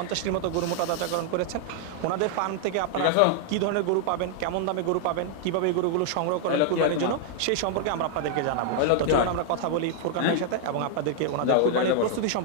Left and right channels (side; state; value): both; different; correlation 0.00